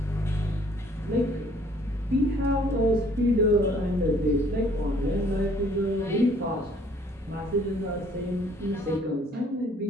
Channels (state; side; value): normal; both; correlation 0.59